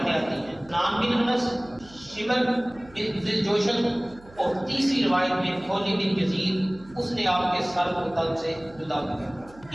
آتی ہیں، سنان بن انس، شمر بن ذل جوشن، اور تیسری روایت میں خولد بن یزید، اس نے آپ کے سر کو تن سے جدا کیا۔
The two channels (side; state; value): right; noise; hum, 23 dB below the sound